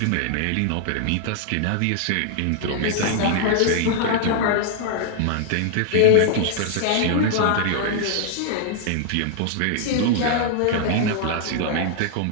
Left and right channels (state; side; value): different; both; correlation -0.01